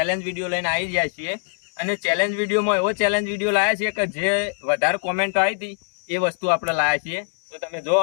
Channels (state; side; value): silent; right; 64 dB below the other